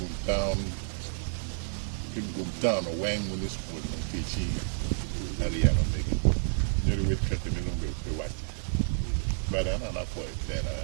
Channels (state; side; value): silent; left; digital silence